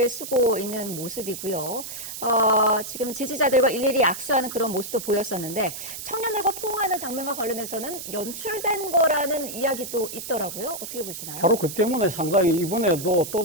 쓰고 있는 모습이고요. 지금 지지자들과 일일이 악수하는 그런 모습도 보였었는데, 청년들과 포옹하는 장면과 관련해서는 연출된 거라는 이야기도 있더라고요. 어떻게 보시나요? 바로 그 때문에 상당히 이번에도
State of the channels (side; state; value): right; noise; hiss, 9 dB below the sound